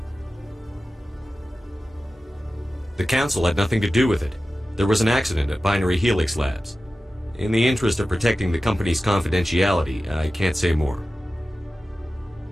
The Council had nothing to do with it. There was an accident at Binary Helix Labs. In the interest of protecting the company's confidentiality, I can't say more.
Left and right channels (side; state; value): both; normal; correlation 0.94